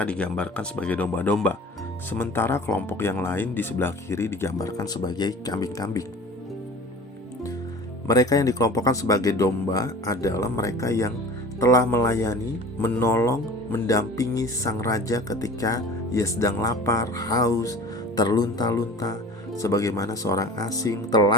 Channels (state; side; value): normal; both; correlation 0.41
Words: digambarkan sebagai domba-domba. Sementara kelompok yang lain di sebelah kiri digambarkan sebagai kambing-kambing. Mereka yang dikelompokkan sebagai domba adalah mereka yang telah melayani, menolong, mendampingi sang raja ketika ia sedang lapar, haus, terlunta-lunta, sebagaimana seorang asing,